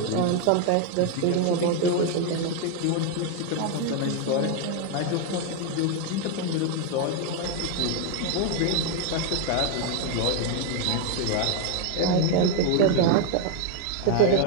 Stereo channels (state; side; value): different; both; correlation 0.01